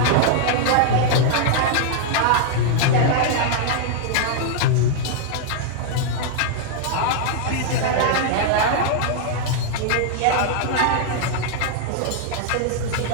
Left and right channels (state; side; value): different; both; correlation -0.01